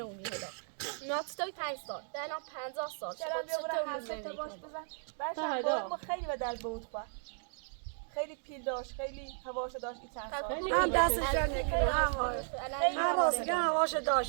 هدا ناتوی 5 سال الان 50 سال چرا بیا برو حرف تا باش بزن بعدش ما خیلی به درد بود خوا خیلی پیل داشت خیلی هواشو داشت این چند سال هم دستش جان نکنه هم راسته هواش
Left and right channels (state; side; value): silent; left; 54 dB below the other